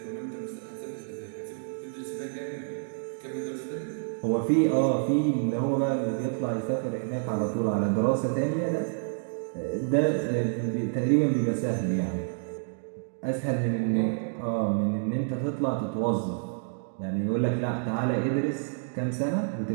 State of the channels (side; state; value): left; silent; digital silence